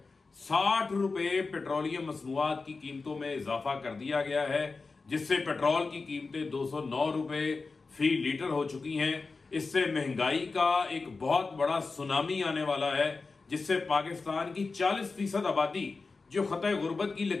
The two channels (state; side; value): quieter; right; 4.1 dB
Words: 60 روپے پیٹرولیم مصنوعات کی قیمتوں میں اضافہ کر دیا گیا ہے، جس سے پیٹرول کی قیمتیں 209 روپے فی لیٹر ہو چکی ہیں۔ اس سے مہنگائی کا ایک بہت بڑا سونامی آنے والا ہے، جس سے پاکستان کی 40% آبادی جو خطۂ غربت کی